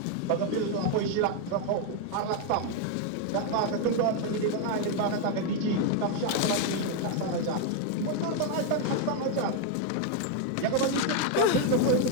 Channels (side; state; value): both; different; correlation 0.01